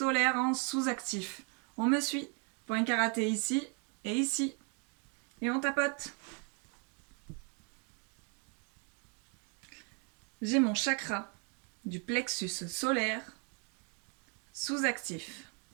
en sous-actif. On me suit. Point karaté ici et ici. Et on tapote. J'ai mon chakra du plexus solaire sous-actif.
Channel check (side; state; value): left; quieter; 36.7 dB